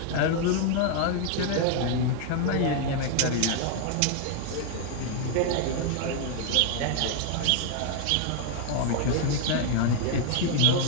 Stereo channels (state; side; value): different; both; correlation 0.00